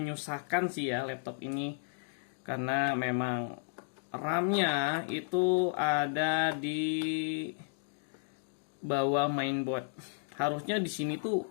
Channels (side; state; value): right; silent; digital silence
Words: sih ya laptop ini, karena memang RAM-nya itu ada di bawah mainboard. Harusnya di sini tuh